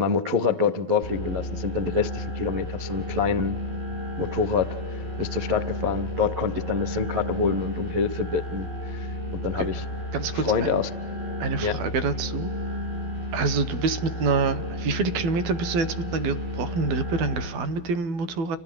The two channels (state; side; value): late; left; 12 ms